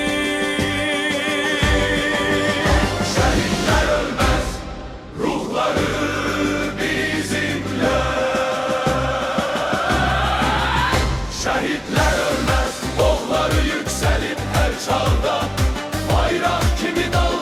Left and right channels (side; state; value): both; identical; correlation 1.00